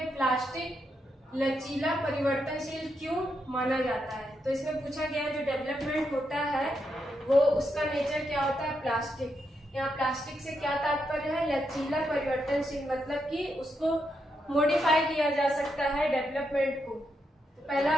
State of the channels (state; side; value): normal; both; correlation 0.82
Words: प्लास्टिक लचीला परिवर्तनशील क्यों माना जाता है। तो इसमें पूछा गया है जो डेवलपमेंट होता है वो उसका नेचर क्या होता है, प्लास्टिक। यहाँ प्लास्टिक से क्या तात्पर्य है, लचीला परिवर्तनशील, मतलब कि उसको मॉडिफाई किया जा सकता है डेवलपमेंट को। तो पहला